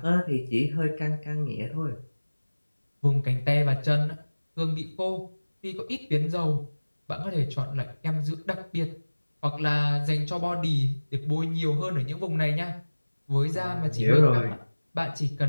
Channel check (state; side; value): inverted; both; correlation -1.00